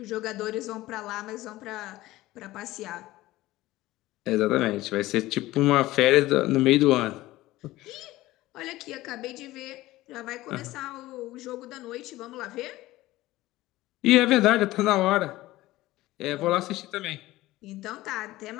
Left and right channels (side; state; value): right; quieter; 17.3 dB